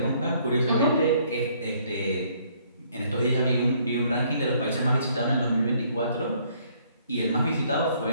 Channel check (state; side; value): inverted; both; correlation -0.65